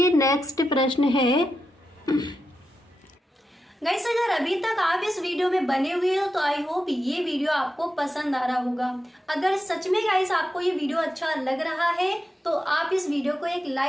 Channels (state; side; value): normal; both; correlation 0.89